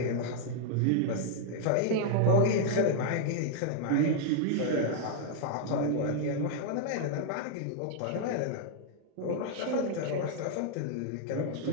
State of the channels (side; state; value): both; different; correlation 0.00